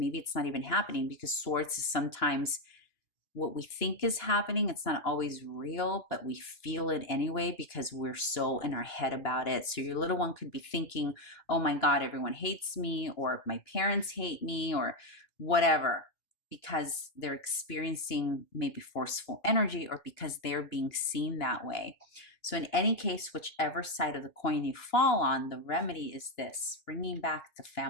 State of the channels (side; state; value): right; late; 2.9 ms